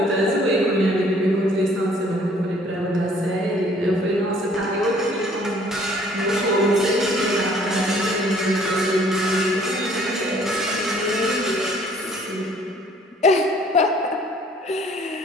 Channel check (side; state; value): both; normal; correlation 0.58